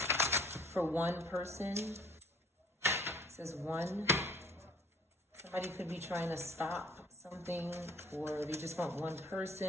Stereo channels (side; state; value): both; normal; correlation 0.55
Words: For one person, it says one. Somebody could be trying to stop something, or they just want one